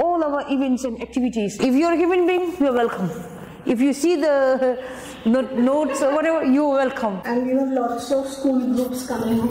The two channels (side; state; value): both; identical; correlation 1.00